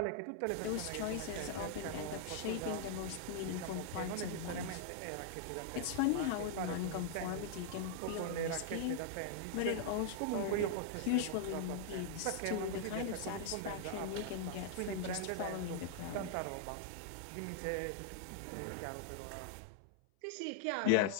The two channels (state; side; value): different; both; correlation -0.01